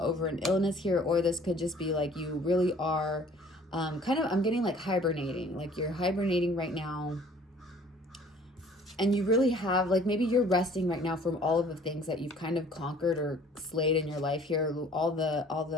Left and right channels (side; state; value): both; normal; correlation 0.53